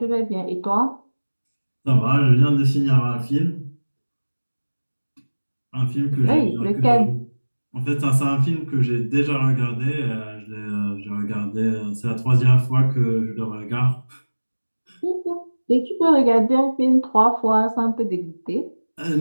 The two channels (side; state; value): both; inverted; correlation -1.00